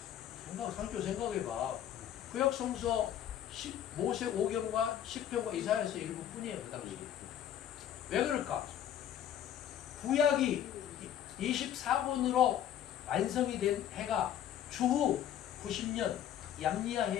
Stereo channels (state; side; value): quieter; right; 10.5 dB